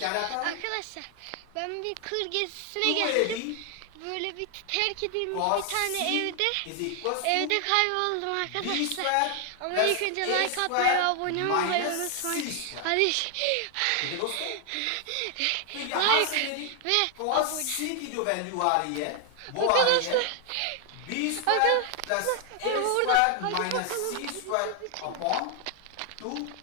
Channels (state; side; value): different; both; correlation 0.00